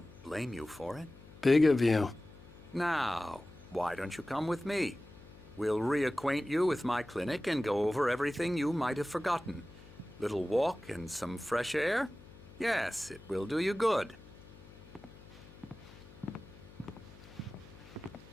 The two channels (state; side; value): noise; left; hum, 20 dB below the sound